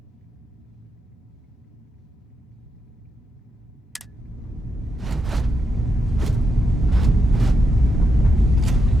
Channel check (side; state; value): both; normal; correlation 0.83